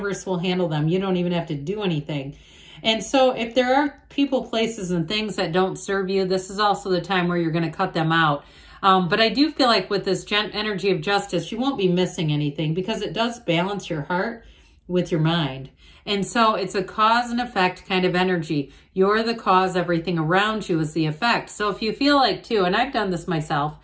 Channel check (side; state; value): both; identical; correlation 1.00